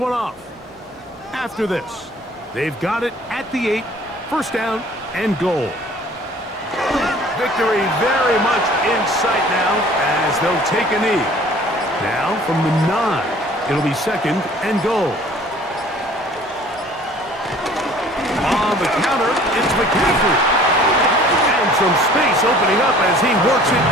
off. After this, they've got it at the 8, first down and goal. Victory very much in sight now as they'll take a knee. Now from the 9, it'll be second and goal. On the counter, it's McCaffrey. And some space opening up as he works it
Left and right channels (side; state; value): both; normal; correlation 0.51